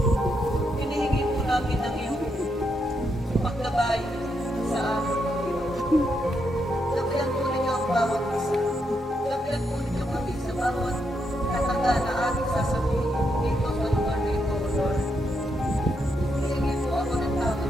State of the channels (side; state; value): both; normal; correlation 0.80